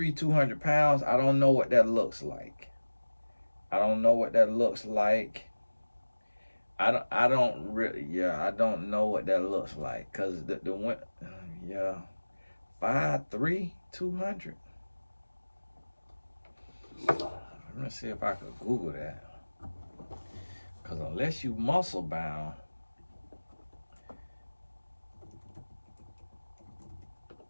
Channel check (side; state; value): both; inverted; correlation -1.00